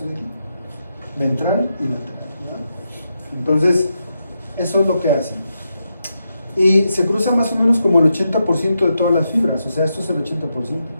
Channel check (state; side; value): inverted; both; correlation -0.85